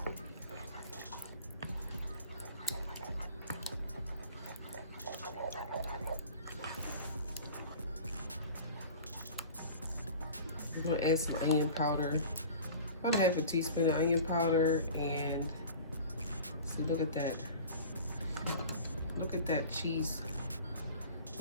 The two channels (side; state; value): both; inverted; correlation -0.40